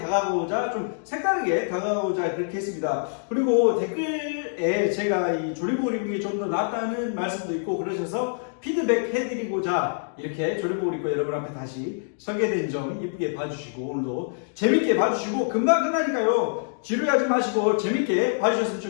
다가오자, 좀 색다르게 다가오자 그렇게 했습니다. 그리고 댓글에 제가 이 조리복을 입는 게 좀 더 낫다는 말씀도 있고 그러셔서 피드백 해드리고자 이렇게 조리복을 입고 여러분 앞에 다시 서게 된 점 이쁘게 봐주시고 오늘도 재밌게 봐주시고 금방 끝나니까요. 지루하지 마시고 재밌게 봐주셨으면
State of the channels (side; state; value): right; silent; digital silence